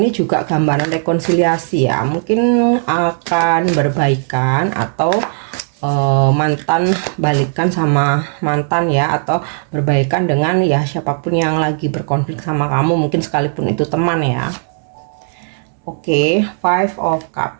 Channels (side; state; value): left; silent; digital silence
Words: juga gambaran rekonsiliasi ya, mungkin akan berbaikan atau mantan balikan sama mantan ya, atau berbaikan dengan ya siapapun yang lagi berkonflik sama kamu, mungkin sekalipun itu teman ya. Oke, Five of